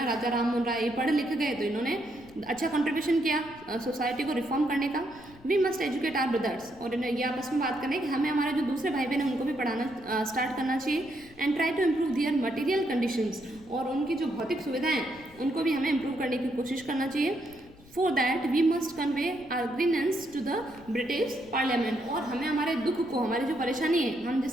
राजा राम मोहन राय, ये पढ़ लिख गए तो इन्होंने अच्छा कंट्रीब्यूशन किया सोसाइटी को रिफॉर्म करने का। We must educate our brothers, और ये आपस में बात करें कि हमें हमारे जो दूसरे भाई बहन हैं उनको भी पढ़ाना स्टार्ट करना चाहिए। And try to improve their material conditions, और उनकी जो भौतिक सुविधाएं उनको भी हमें इम्प्रूव करने की कोशिश करना चाहिए। For that we must convey our grievance to the British Parliament, और हमें हमारे दुख को, हमारी जो परेशानी है, हम जिस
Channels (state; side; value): noise; left; rumble, 23 dB below the sound